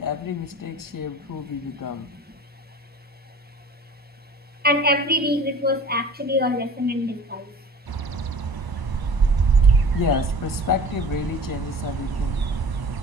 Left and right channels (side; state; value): both; normal; correlation 0.42